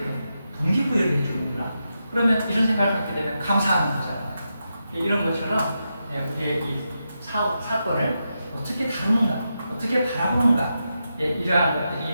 동기부여를 해주는구나. 그러면 이런 생각을 갖게 되면 감사하는 거잖아요. 이런 것처럼 우리의 이 사건을 어떻게 다루는가, 어떻게 바라보는가, 이러한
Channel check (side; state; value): both; inverted; correlation -0.87